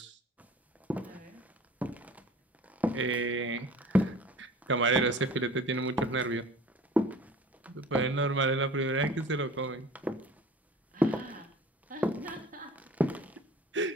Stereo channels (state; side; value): normal; both; correlation 0.44